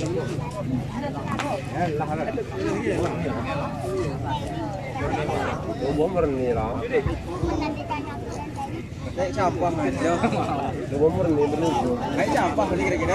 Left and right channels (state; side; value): identical; both; correlation 1.00